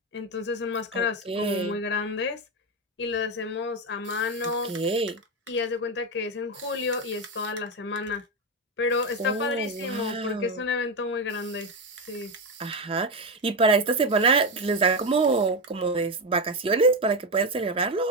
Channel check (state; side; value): normal; both; correlation 0.11